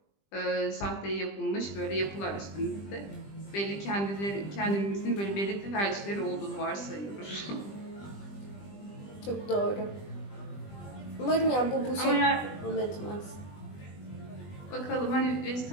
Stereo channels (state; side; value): late; right; 20 ms